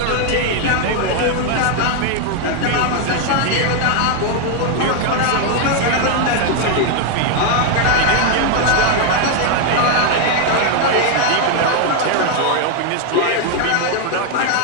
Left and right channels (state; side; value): different; both; correlation 0.01